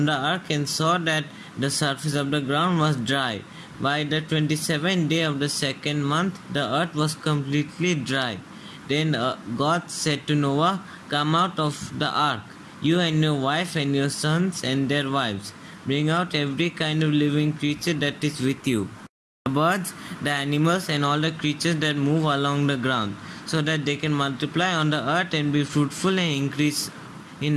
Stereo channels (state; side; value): identical; both; correlation 1.00